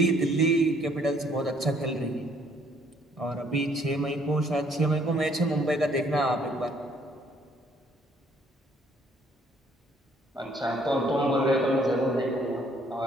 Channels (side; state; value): both; normal; correlation 0.64